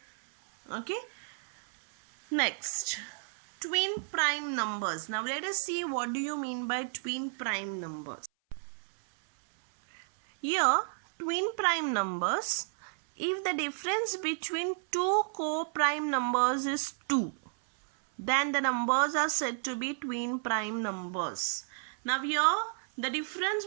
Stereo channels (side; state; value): left; silent; 57 dB below the other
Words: Okay, next, twin prime numbers. Now let us see what do you mean by twin prime numbers. Here twin prime numbers, if the difference between two co-prime numbers is 2, then the numbers are said to be twin prime numbers. Now here the difference